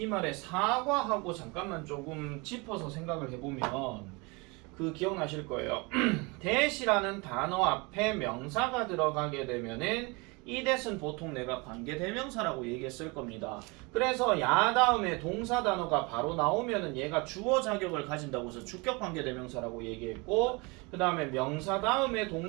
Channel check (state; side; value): quieter; left; 27.8 dB